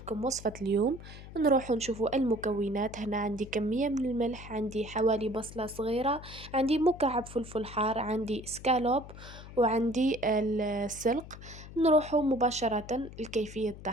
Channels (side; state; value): left; noise; hum, 15 dB below the sound